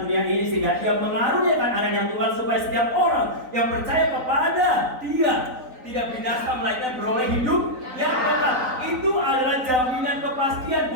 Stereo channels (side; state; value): left; late; 3.9 ms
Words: dunia ini, sehingga Dia mengaruniakan anak yang tunggal supaya setiap orang yang percaya kepada Dia tidak binasa melainkan beroleh hidup yang kekal. Itu adalah jaminan kepastian,